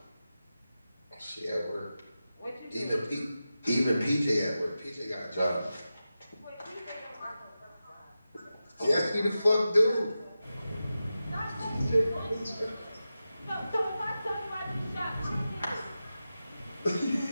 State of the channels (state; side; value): inverted; both; correlation -0.93